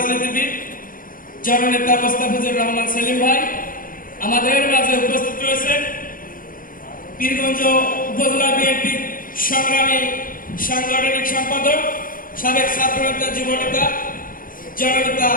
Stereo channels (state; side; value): late; right; 0.40 ms